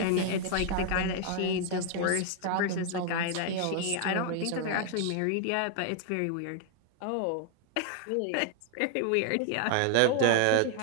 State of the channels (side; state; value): both; different; correlation 0.00